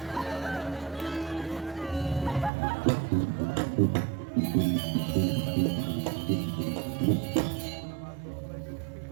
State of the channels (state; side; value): drops out; left; at 2.5 s